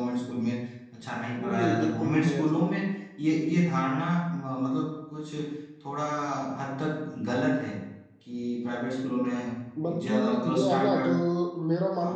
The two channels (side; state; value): both; identical; correlation 1.00